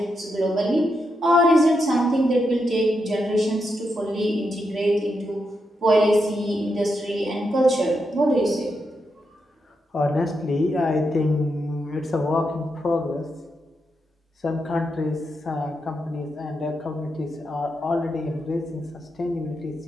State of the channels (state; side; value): normal; both; correlation 0.84